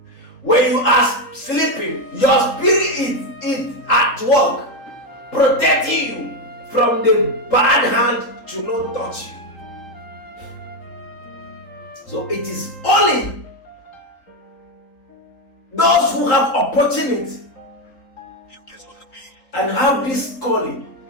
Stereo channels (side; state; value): right; late; 3.8 ms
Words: When you are sleeping, your spirit is at work, protecting you from the bad hand to not touch you. So it is only those who have opportunity and have this calling